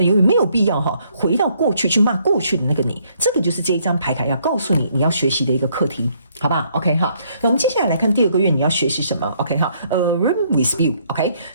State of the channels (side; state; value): both; inverted; correlation -0.68